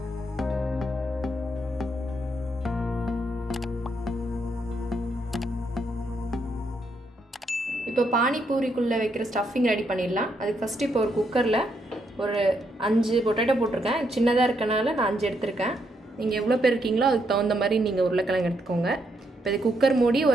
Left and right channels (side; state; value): both; normal; correlation 0.77